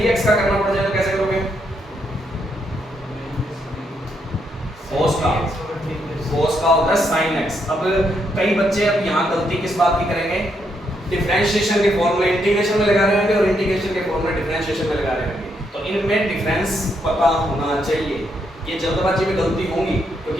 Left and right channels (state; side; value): normal; both; correlation 0.77